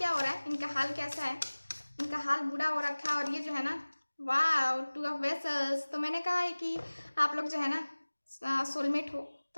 हो रहा है, इनका हाल कैसा है, इनका हाल बुरा हो रखा है और ये जो है ना वाह, टू ऑफ वेसल्स। तो मैंने कहा है कि आप लोग जो है ना सोलमेट हो।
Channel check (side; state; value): both; inverted; correlation -1.00